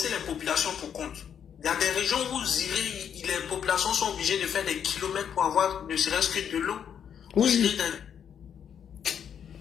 les populations pour compte. Il y a des régions où vous irez, les populations sont obligées de faire des kilomètres pour avoir ne serait-ce que de l'eau. Oui. Vous irez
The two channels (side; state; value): right; quieter; 8.3 dB